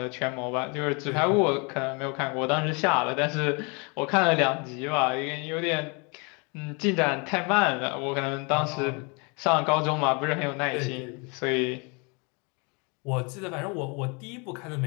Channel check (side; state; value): right; quieter; 31.9 dB